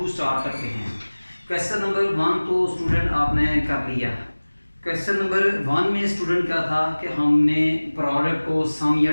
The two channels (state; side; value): inverted; both; correlation -1.00